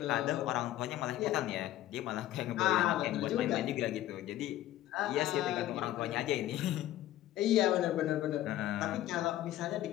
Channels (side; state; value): right; quieter; 13.9 dB